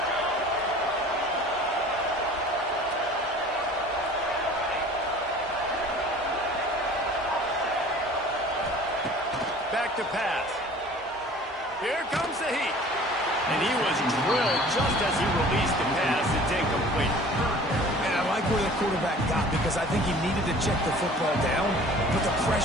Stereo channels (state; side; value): normal; both; correlation 0.46